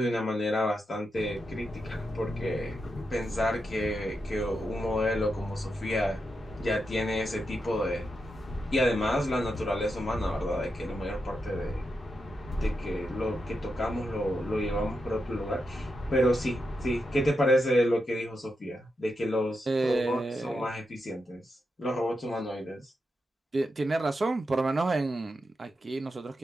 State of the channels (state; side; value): normal; both; correlation 0.86